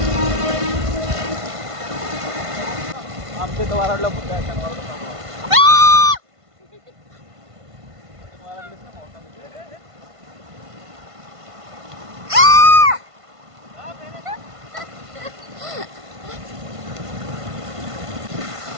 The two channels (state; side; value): late; left; 1.5 ms